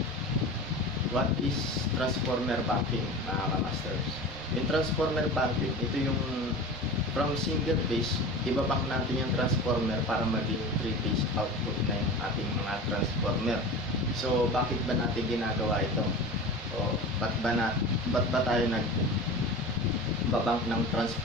what is transformer banking mga ka-masters? Yung transformer banking, ito yung from single phase, ibabank natin yung transformer para maging 3-phase output na yung ating mga transformer. So, bakit ba natin ginagawa ito? O, ba't ba tayo nagbabank ng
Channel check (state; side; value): normal; both; correlation 0.33